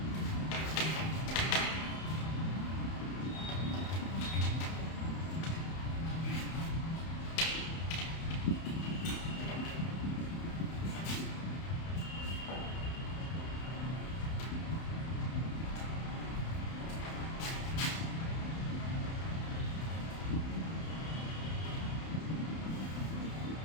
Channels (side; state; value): right; late; 31 ms